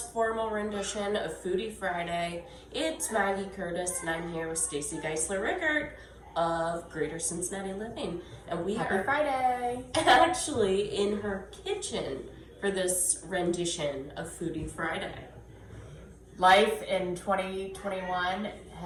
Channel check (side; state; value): both; identical; correlation 1.00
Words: formal rendition of Foodie Friday. It's Maggie Curtis and I'm here with Stacy Geisler Rickert of Greater Cincinnati Living. And we Happy are Friday! actually in her kitchen for this rendition of Foodie Friday. Life in 2021